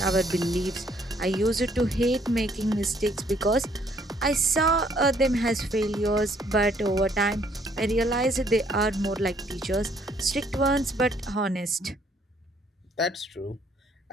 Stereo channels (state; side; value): normal; both; correlation 0.65